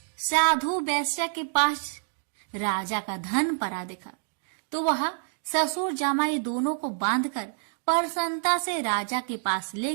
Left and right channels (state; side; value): silent; left; digital silence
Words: साधु वैश्या के पास राजा का धन पड़ा देखा तो वह ससुर जमाई दोनों को बांधकर प्रसन्नता से राजा के पास ले